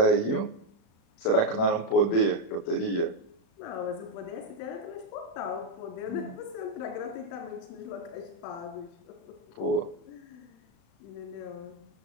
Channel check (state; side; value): late; right; 36 ms